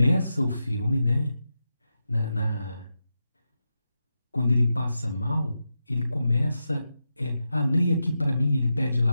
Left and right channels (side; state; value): both; inverted; correlation -0.88